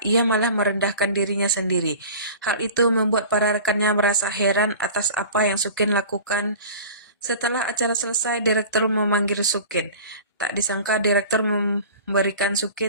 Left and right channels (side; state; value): both; inverted; correlation -0.40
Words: malah merendahkan dirinya sendiri. Hal itu membuat para rekannya merasa heran atas apa yang Sukin lakukan. Setelah acara selesai, direktur memanggil Sukin. Tak disangka direktur memberikan